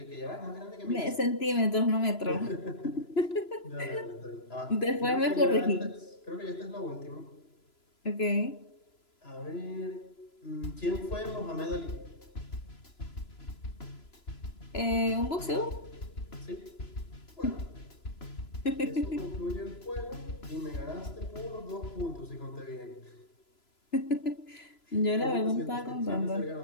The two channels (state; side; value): late; right; 3.0 ms